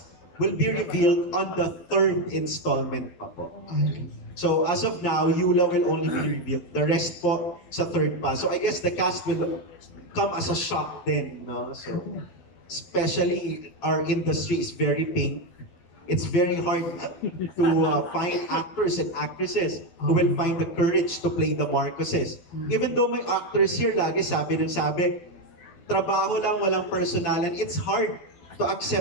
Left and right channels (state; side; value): late; right; 12 ms